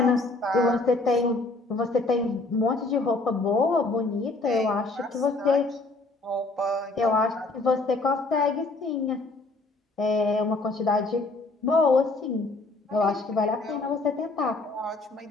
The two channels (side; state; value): right; quieter; 3.2 dB